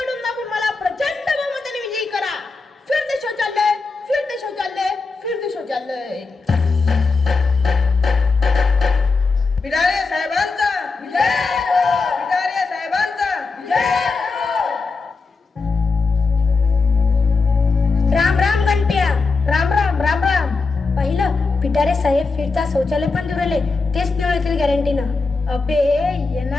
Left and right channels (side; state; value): right; quieter; 4.2 dB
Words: दाबून मला प्रचंड बहुमताने विजयी करा. फिरते शौचालय, फिरते शौचालय, फिरते शौचालय. पिटारे साहेबांचा विजय. पिटारे साहेबांचा विजय. राम राम गणप्या. राम राम राम राम. पहिलं पिटारे साहेब फिरता शौचालय पण निवडले, तेच निवडतील गॅरंटीनं. अबे